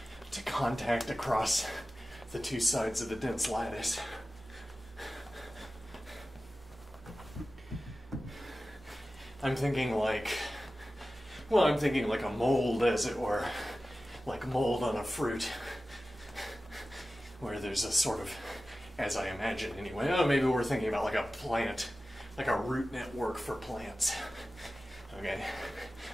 to contact across the two sides of the dense lattice. I'm thinking like a mold, as it were, like mold on a fruit, where there's a sort of, as I imagine anyway, maybe we're thinking about like a plant, like a root network for plants. Okay,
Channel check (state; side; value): normal; both; correlation 0.95